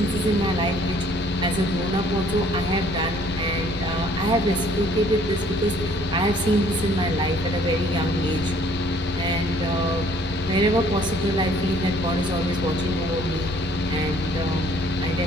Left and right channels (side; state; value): left; noise; rumble, 13 dB below the sound